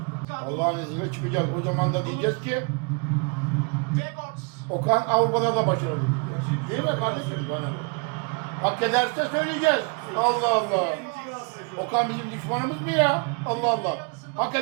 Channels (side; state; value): left; quieter; 34.2 dB